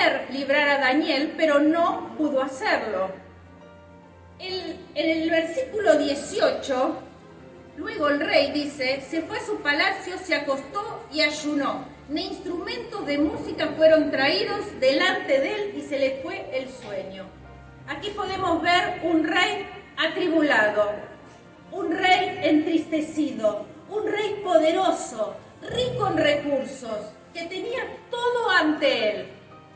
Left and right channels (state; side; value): identical; both; correlation 1.00